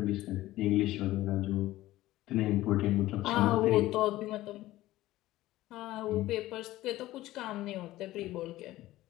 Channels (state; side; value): quieter; right; 16.2 dB